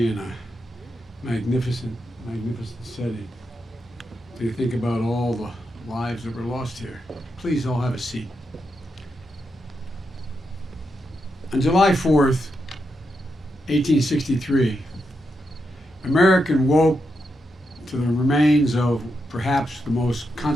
in a magnificent setting. To think about all the lives that were lost here. Please all have a seat. On July 4th, 1863, America woke to the remains of perhaps the most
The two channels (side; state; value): both; normal; correlation 0.84